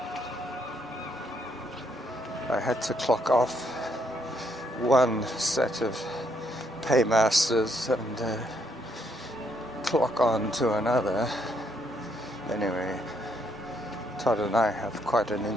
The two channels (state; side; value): normal; both; correlation 0.73